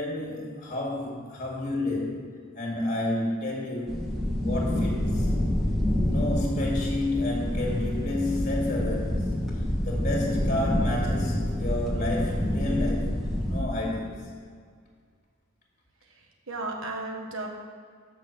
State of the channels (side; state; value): both; normal; correlation 0.78